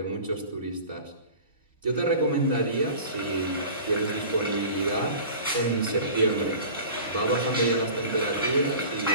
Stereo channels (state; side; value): inverted; both; correlation -0.40